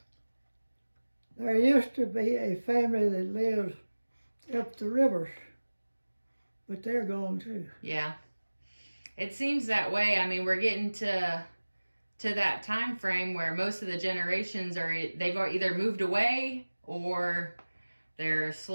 there used to be a family that lived up the rivers, but they're gone too. Yeah. It seems that way. I mean, we're getting to that time frame where most of the generations are they've either moved away or they're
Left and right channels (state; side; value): inverted; both; correlation -1.00